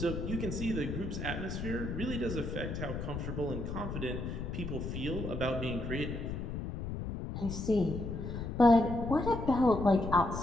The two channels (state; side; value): noise; left; rumble, 5 dB below the sound